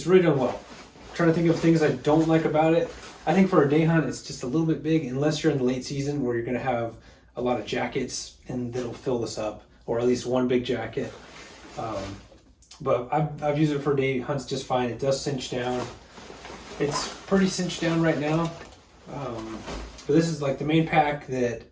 really done well. I'm trying to think of things I don't like about it. I think for a day hunt, it's just a little bit big, unless you're in the late season where you're going to have a lot of jackets and that'll fill this up, or at least one big jacket. But I've used it for day hunts just fine. It does cinch down. It's pretty cinched down right now. But this is like the main pack that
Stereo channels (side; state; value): both; identical; correlation 1.00